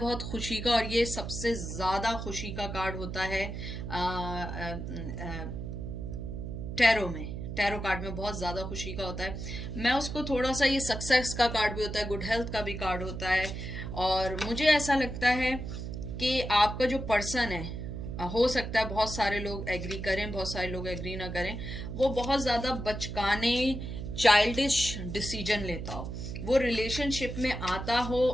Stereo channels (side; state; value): right; noise; hum, 6 dB below the sound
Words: खुशी का, और ये सबसे ज्यादा खुशी का कार्ड होता है टैरो में। टैरो कार्ड में बहुत ज्यादा खुशी का होता है। मैं उसको थोड़ा सा, ये सक्सेस का कार्ड भी होता है, गुड हेल्थ का भी कार्ड होता है, और मुझे ऐसा लगता है कि आपका जो पर्सन है, हो सकता है बहुत सारे लोग एग्री करें, बहुत सारे लोग एग्री ना करें, वो बहुत ज्यादा बचकाने, चाइल्डिश डिसीजन लेता हो, वो रिलेशनशिप में आता